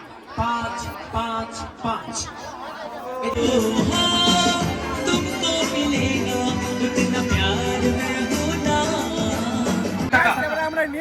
5 तुमको मिलेगा उतना प्यार में होना এবারে আমরা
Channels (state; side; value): identical; both; correlation 1.00